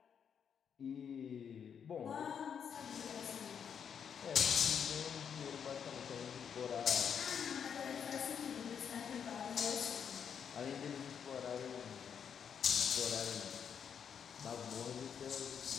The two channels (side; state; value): right; quieter; 7.5 dB